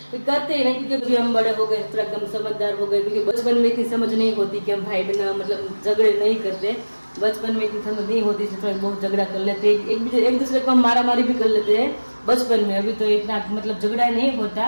करते ही नहीं, क्योंकि अभी हम बड़े हो गए, थोड़ा कम समझदार हो गए। क्योंकि बचपन में इतनी समझ नहीं होती कि हम भाई बहन मतलब झगड़े नहीं करते, बचपन में इतनी समझ नहीं होती, थोड़ा बहुत झगड़ा कर लेते, एक दूसरे को हम मारा मारी भी कर लेते हैं बचपन में। अभी तो इतना मतलब झगड़ा नहीं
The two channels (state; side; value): inverted; both; correlation -1.00